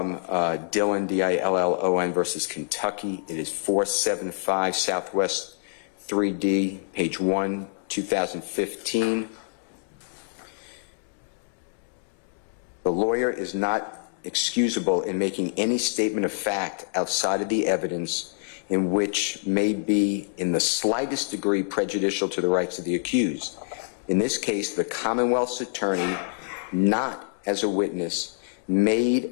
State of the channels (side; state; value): right; silent; digital silence